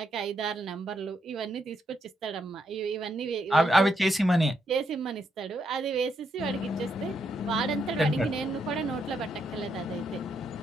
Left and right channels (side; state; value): both; normal; correlation 0.78